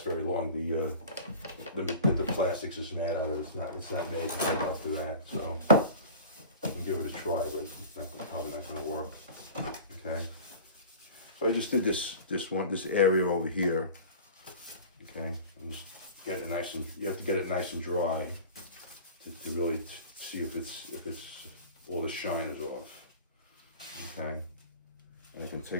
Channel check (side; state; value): both; inverted; correlation -0.38